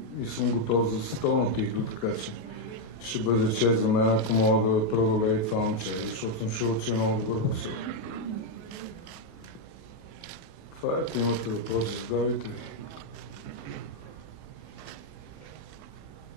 и съм готов за световна титла, така че ще бъде чест за мен, ако мога да преодолея това момче, защото съм чул, че е много добър боксер. Това е, ако имате въпроси, задавайте.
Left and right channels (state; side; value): late; right; 28 ms